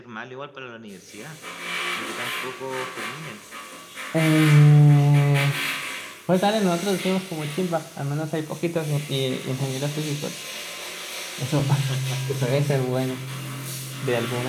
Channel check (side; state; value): both; identical; correlation 1.00